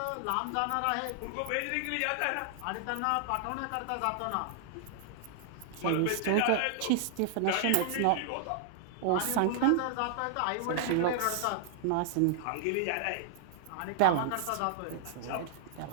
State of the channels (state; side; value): different; both; correlation -0.01